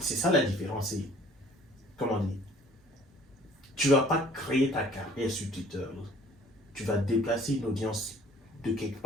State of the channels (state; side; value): normal; both; correlation 0.53